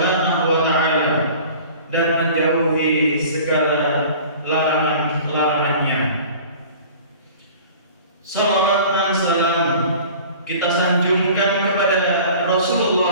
wa taala dan menjauhi segala larangan-larangannya. Salawat dan salam kita sanjungkan kepada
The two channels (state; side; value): inverted; both; correlation -0.44